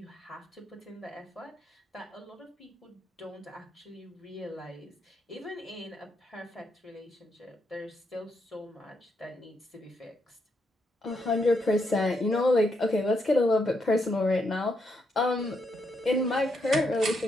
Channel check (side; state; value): both; normal; correlation 0.79